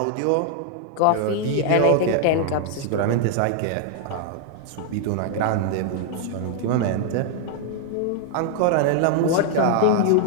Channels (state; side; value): different; both; correlation 0.00